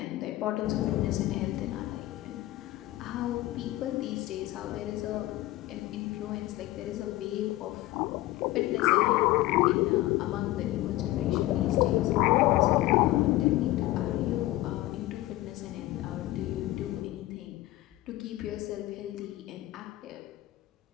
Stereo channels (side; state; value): right; quieter; 17.1 dB